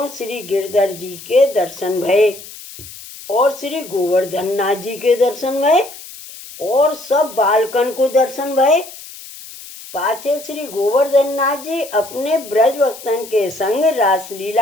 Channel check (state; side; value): noise; left; hiss, 16 dB below the sound